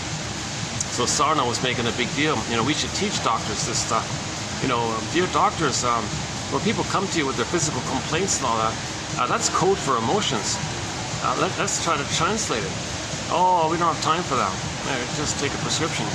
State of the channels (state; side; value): identical; both; correlation 1.00